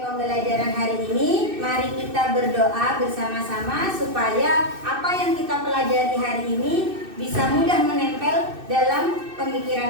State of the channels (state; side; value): late; left; 2.6 ms